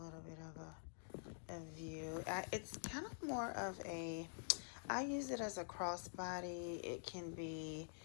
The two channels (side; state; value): right; silent; digital silence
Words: bit of a view. It's kind of more of a, I use it as a crossbody. It can be